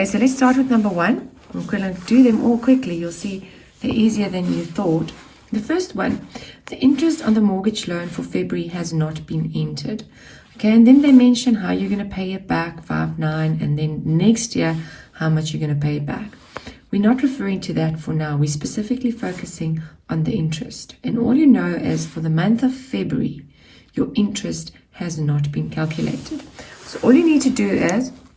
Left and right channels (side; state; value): both; identical; correlation 1.00